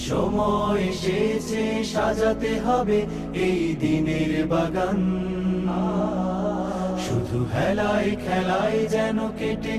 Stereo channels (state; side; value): identical; both; correlation 1.00